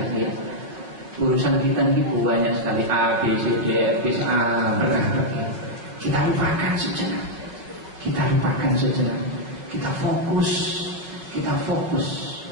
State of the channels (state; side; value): late; left; 5.3 ms